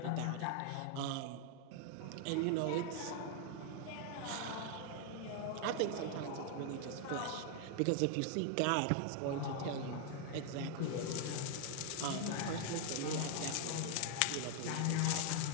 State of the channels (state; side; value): different; both; correlation 0.00